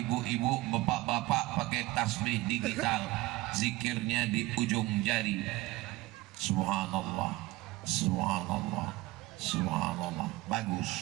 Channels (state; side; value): quieter; left; 19.4 dB